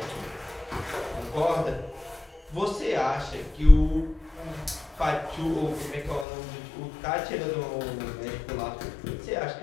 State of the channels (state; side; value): drops out; right; at 6.2 s